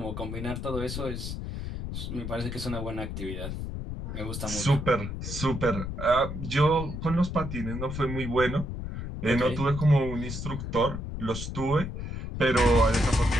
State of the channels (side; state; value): left; noise; rumble, 6 dB below the sound